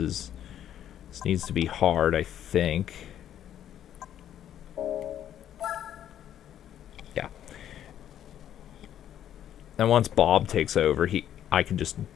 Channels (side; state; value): right; quieter; 10.7 dB